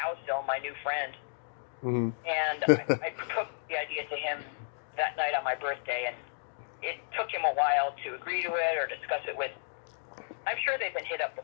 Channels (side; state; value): right; silent; digital silence